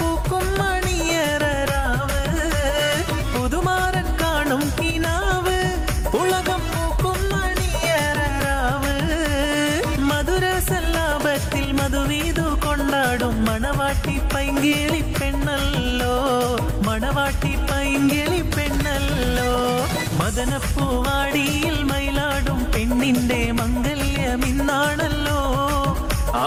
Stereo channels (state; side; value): identical; both; correlation 1.00